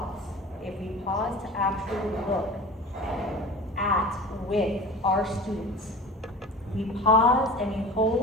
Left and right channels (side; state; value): both; normal; correlation 0.37